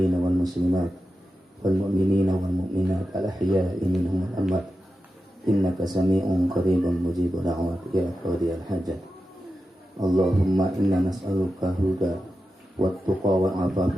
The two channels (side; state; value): both; normal; correlation 0.91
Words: wal muslimat wal mu'minina wal mu'minat al ahya'i minhum wal amwat innaka sami'un qaribun mujibud da'wat ya qadiyal hajat. Allahumma inna nas'aluka huda wat tuqa wal afafa